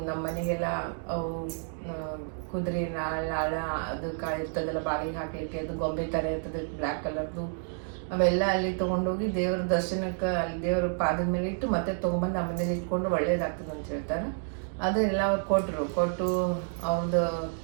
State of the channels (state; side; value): silent; left; digital silence